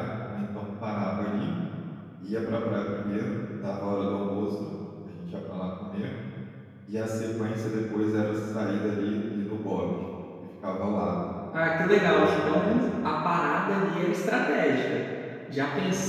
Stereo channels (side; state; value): both; identical; correlation 1.00